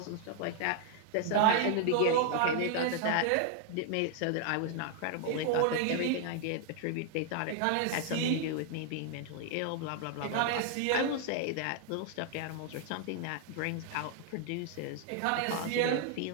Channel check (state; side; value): different; both; correlation 0.00